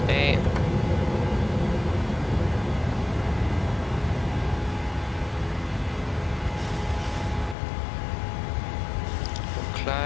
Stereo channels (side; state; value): right; drops out; at 7.6 s